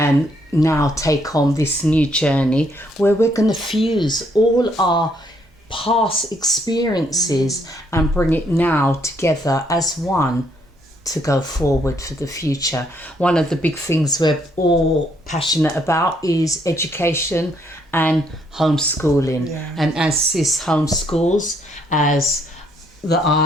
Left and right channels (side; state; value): both; normal; correlation 0.71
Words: now take on this new journey where we're going to fuse all our past experiences and bring it now together as one to go forward for the future. One of the big things we're all passionate about is education and homeschooling. And as Sis homeschools, as